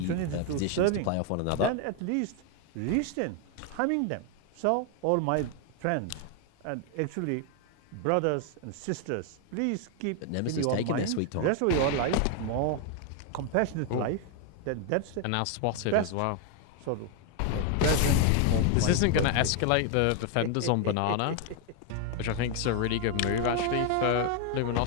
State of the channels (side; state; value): both; different; correlation 0.01